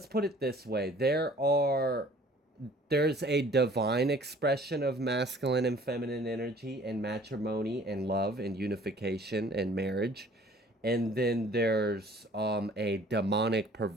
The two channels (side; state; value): both; normal; correlation 0.53